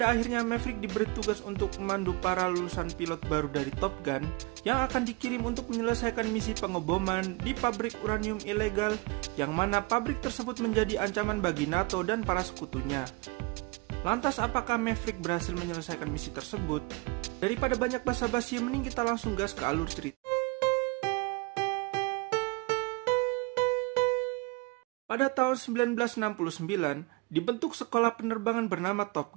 akhirnya Maverick diberi tugas untuk memandu para lulusan pilot baru dari Top Gun yang akan dikirim untuk menyelesaikan misi pengeboman di pabrik uranium ilegal, yang mana pabrik tersebut menjadi ancaman bagi NATO dan para sekutunya. Lantas apakah Maverick berhasil menyelesaikan misi tersebut? Daripada banyak basa-basi, mending kita langsung gas ke alur cerita. Pada tahun 1969, dibentuk sekolah penerbangan bernama Top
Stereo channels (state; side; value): quieter; left; 26.6 dB